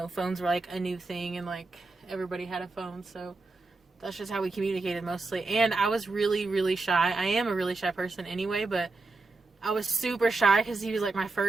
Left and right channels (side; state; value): left; quieter; 3.6 dB